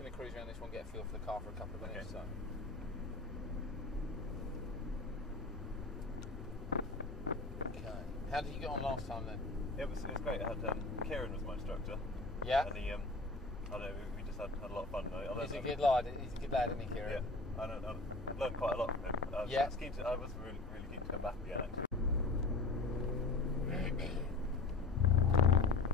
to cruise around this one, get a feel for the car for a couple of minutes. Okay. Okay. How did you get on last time then? It was great. I had Kieran was my instructor. Yeah. And he, I don't know, we just had a lot of fun. He's a good lad. He's a good lad, isn't he, Kieran? Yeah. I've learned quite a lot from him. I was really keen to come back again, actually.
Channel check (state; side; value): quieter; right; 3.3 dB